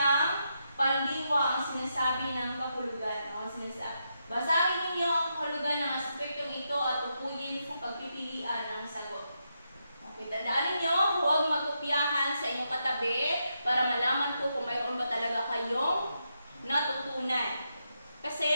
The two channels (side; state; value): both; inverted; correlation -0.83